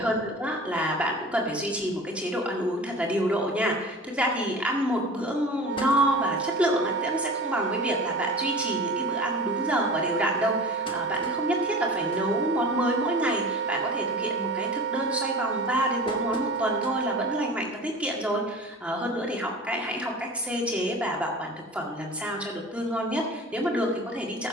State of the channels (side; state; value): both; normal; correlation 0.37